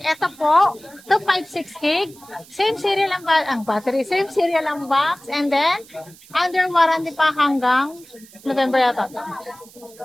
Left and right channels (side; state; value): right; noise; hiss, 23 dB below the sound